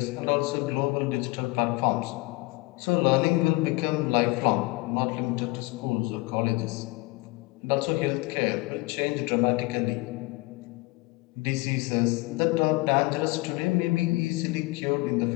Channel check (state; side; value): quieter; right; 23.1 dB